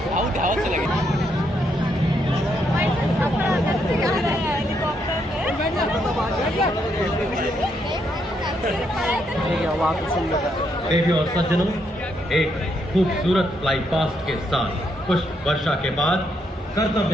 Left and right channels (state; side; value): normal; both; correlation 0.76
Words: से लगे देवियों और सज्जनों, एक खूबसूरत fly past के साथ पुष्प वर्षा के बाद